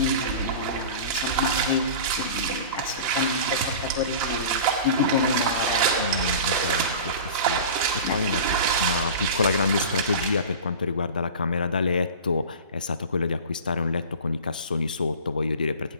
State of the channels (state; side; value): inverted; both; correlation -0.35